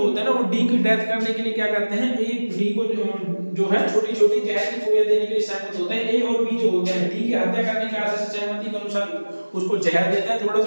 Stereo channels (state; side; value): inverted; both; correlation -1.00